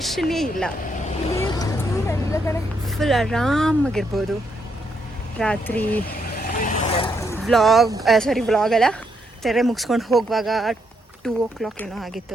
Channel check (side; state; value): both; normal; correlation 0.77